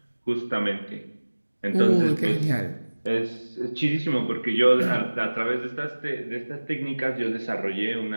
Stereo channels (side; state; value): both; inverted; correlation -1.00